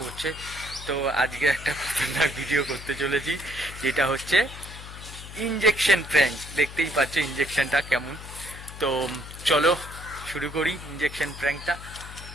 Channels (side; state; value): left; noise; hum, 13 dB below the sound